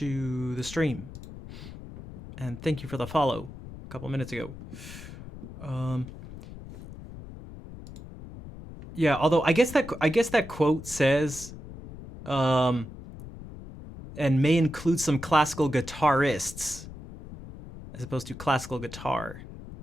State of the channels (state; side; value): noise; left; rumble, 14 dB below the sound